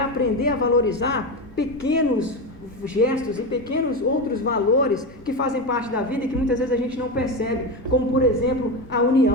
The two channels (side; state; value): both; normal; correlation 0.17